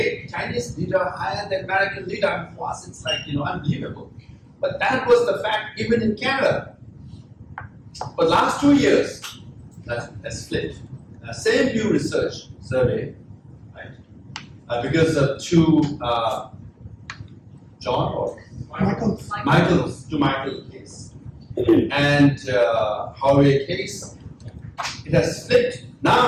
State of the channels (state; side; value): identical; both; correlation 1.00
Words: Chinese leader higher than American leader? For us, it's like, unbelievable. But that was the fact even in Canada. But last 2 years, that's flipped. Same Pew Research survey, right? Because of two John or Michael case and Huawei case, it has flipped.